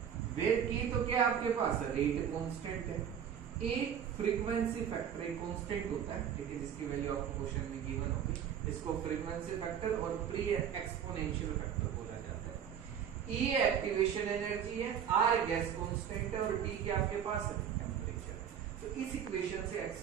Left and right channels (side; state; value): left; quieter; 8.6 dB